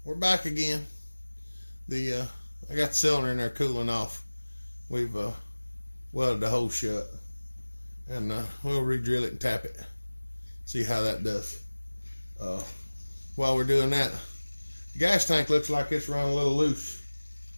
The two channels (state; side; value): inverted; both; correlation -1.00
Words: we're back again. I got the cylinder in there cooling off. We've welded the hole shut, and we'll re-drill it and tap it, see how that does. While we're doing that, the gas tank looks like it's run a little loose